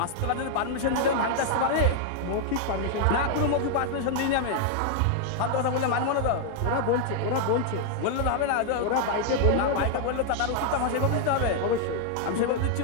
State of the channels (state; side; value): different; both; correlation 0.00